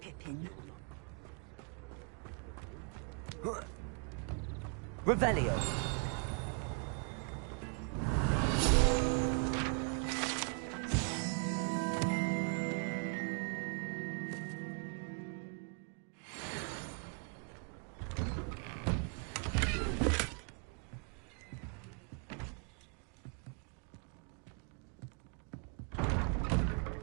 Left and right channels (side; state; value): left; quieter; 38.6 dB